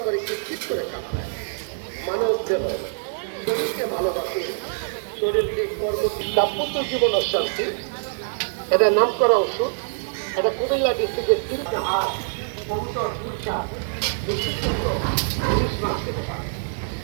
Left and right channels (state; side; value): silent; left; digital silence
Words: করে চিৎচিৎ করে কামড়ায়। মানব দেহ শরীরকে ভালোবাসে, শরীরকে কর্ম দাম্পত্য জীবন অশান্তি, এটা নাম করা ওষুধ। এটা কুমিল্লা ডিস্ট্রিক্টের তিনটা হাত কবুতর পুরসা